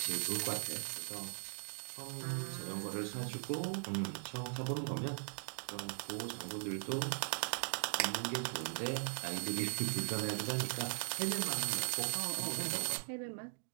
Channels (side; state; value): left; silent; digital silence